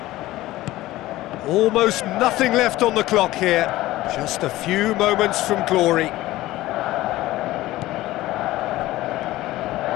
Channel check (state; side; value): quieter; right; 16.8 dB